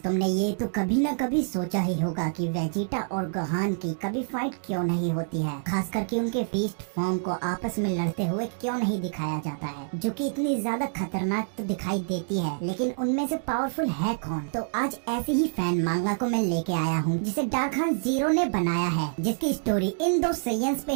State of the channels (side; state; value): left; silent; digital silence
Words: ये तो कभी ना कभी सोचा ही होगा कि वेजिटा और गोहान की कभी फाइट क्यों नहीं होती है, खास करके उनके बीस्ट फॉर्म को आपस में लड़ते हुए क्यों नहीं दिखाया जाता है, जो कि इतनी ज्यादा खतरनाक तो दिखाई देती है, लेकिन उनमें से पावरफुल है कौन। तो आज ऐसे ही फैन मांगा को मैं लेके आया हूँ जिसे डार्क हॉर्स जीरो ने बनाया है, जिसकी स्टोरी इन दो सेयंस पे